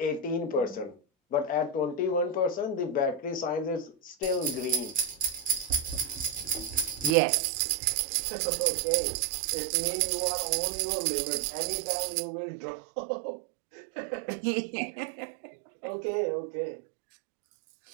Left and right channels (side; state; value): left; drops out; at 7.1 s